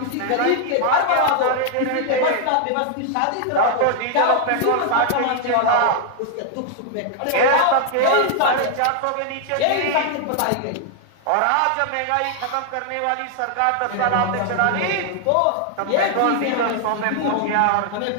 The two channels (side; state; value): both; different; correlation 0.00